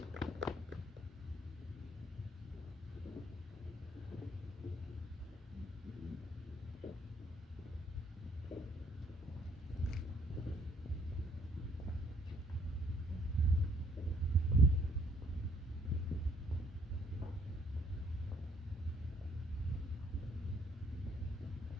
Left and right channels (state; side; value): normal; both; correlation 0.64